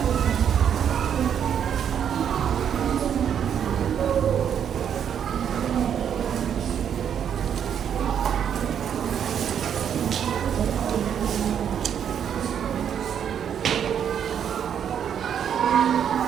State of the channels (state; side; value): quieter; left; 8.6 dB